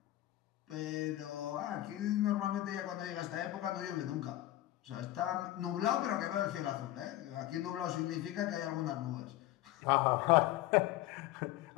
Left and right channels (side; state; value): right; quieter; 15.1 dB